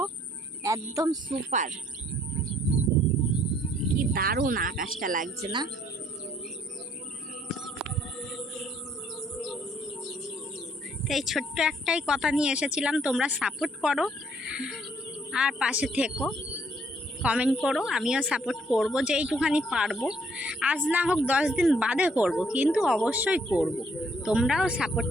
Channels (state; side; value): normal; both; correlation 0.66